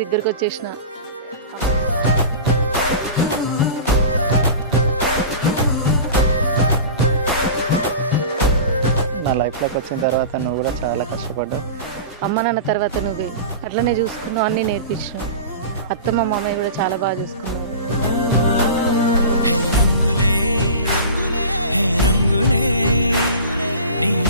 దగ్గరకు వచ్చేసిన. నా లైఫ్లోకి వచ్చిన తర్వాత నువ్వు కూడా చాలా కష్టపడ్డావు. అమ్మ నాన్న తర్వాత నువ్వే అట్లనే చూసుకున్నావు, అన్నీ నేర్పించినావు. అత్తమ్మ మామయ్య కూడా చాలా బాగా చూసుకున్నారు. రంగులే నీ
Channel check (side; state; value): both; inverted; correlation -0.33